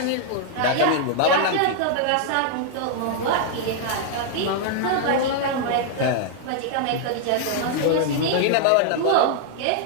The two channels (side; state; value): both; different; correlation -0.01